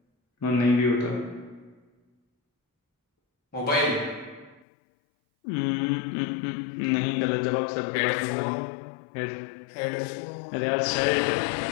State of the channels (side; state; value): right; drops out; at 4.7 s